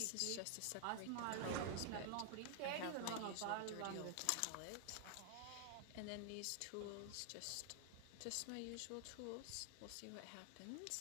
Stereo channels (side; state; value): both; different; correlation 0.00